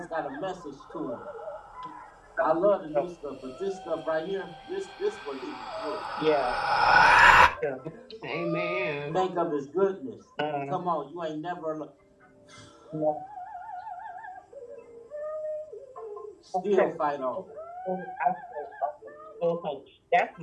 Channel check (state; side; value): identical; both; correlation 1.00